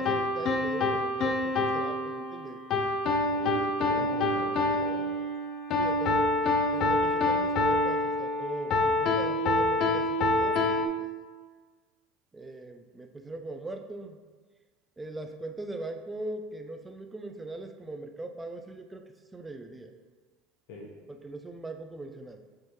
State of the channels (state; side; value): normal; both; correlation 0.42